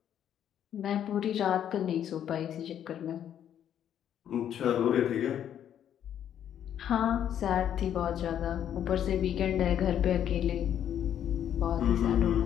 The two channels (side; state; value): right; quieter; 9.9 dB